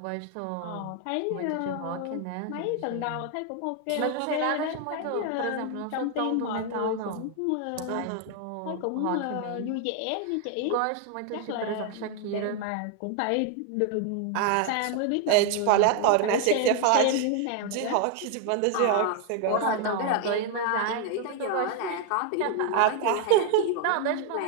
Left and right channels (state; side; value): different; both; correlation 0.00